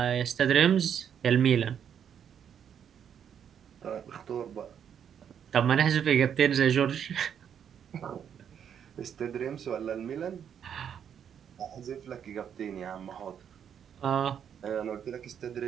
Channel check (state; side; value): quieter; left; 8.4 dB